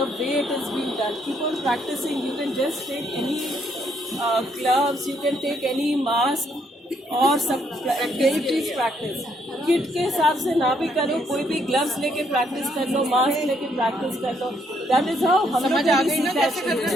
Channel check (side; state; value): both; normal; correlation 0.71